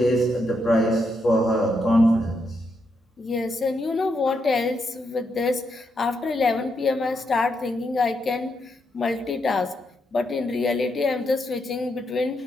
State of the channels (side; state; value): both; normal; correlation 0.80